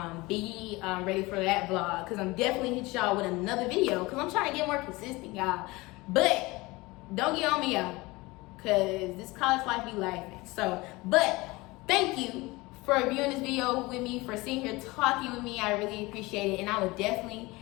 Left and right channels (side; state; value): right; quieter; 22.2 dB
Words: be ready for that vlog, because I'm definitely hit y'all with another video, because I'm trying to get more consistent, y'all. But don't get on me, y'all, because this college life be laughing. So, but thank you for viewing this video with me, for sitting here talking with me. I really appreciate it, and I will definitely